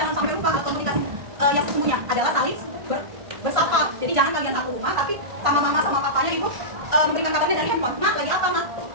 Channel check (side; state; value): left; late; 1.5 ms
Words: sampai lupa alat komunikasi yang sesungguhnya adalah saling bersapa. Jadi jangan kalian satu rumah, tapi sama mama sama papanya itu memberikan kabarnya dari handphone. Mak lagi apa mak?